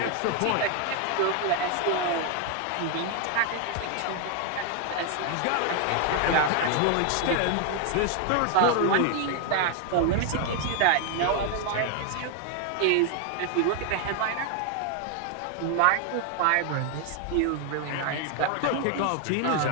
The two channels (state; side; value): different; both; correlation 0.00